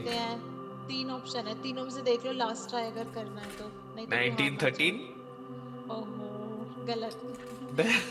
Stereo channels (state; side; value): identical; both; correlation 1.00